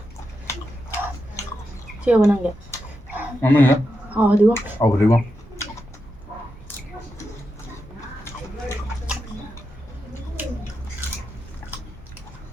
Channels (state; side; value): normal; both; correlation 0.87